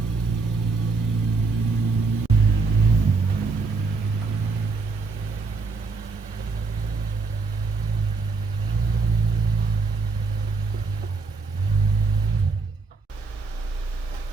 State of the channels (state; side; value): quieter; left; 4.2 dB